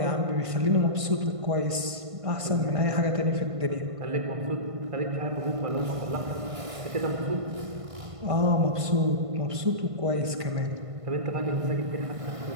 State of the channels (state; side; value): late; left; 1.5 ms